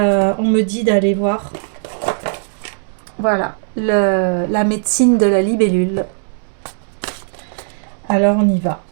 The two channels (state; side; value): silent; left; 68 dB below the other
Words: on me dit d'aller voir. Voilà, la médecine de la libellule. Alors on y va.